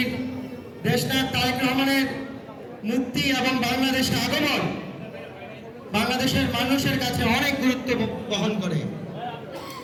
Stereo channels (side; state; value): both; identical; correlation 1.00